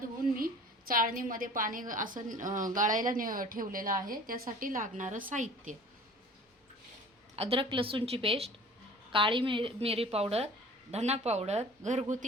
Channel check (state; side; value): normal; both; correlation 0.45